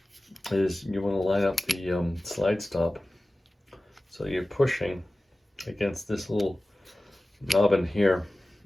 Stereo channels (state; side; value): normal; both; correlation 0.96